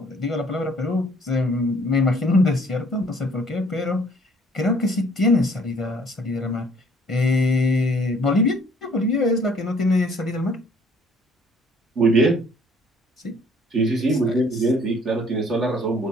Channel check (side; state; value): both; normal; correlation 0.59